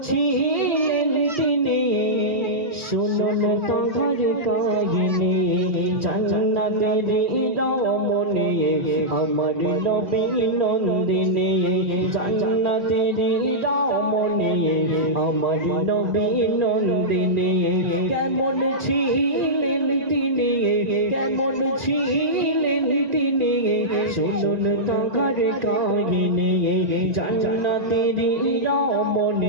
ছিলেন তিনি শুনুন তোমার কাহিনী জান্নাতেরি রমণী আমার নবী নন্দিনী জান্নাতেরি রমণী আমার নবী নন্দিনী কেমন ছিলেন তিনি কেমন ছিলেন তিনি শুনুন তোমার কাহিনী জান্নাতেরি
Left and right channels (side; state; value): left; late; 1.9 ms